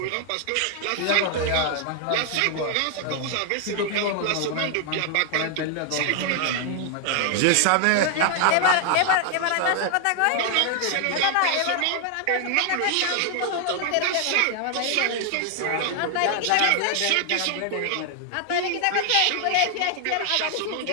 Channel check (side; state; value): both; different; correlation 0.00